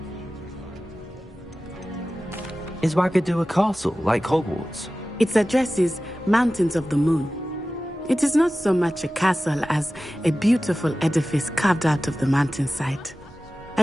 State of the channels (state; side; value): normal; both; correlation 0.95